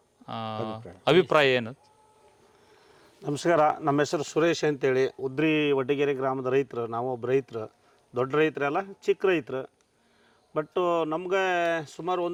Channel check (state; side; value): identical; both; correlation 1.00